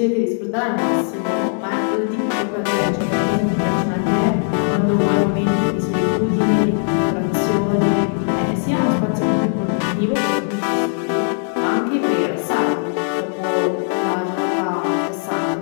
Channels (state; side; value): silent; right; 65 dB below the other